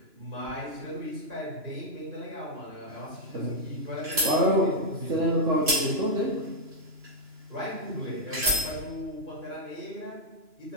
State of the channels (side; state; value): left; late; 2.9 ms